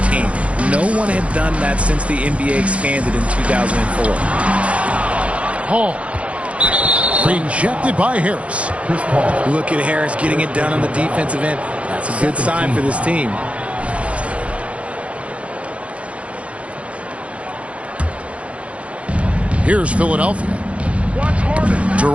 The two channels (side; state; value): left; late; 0.063 ms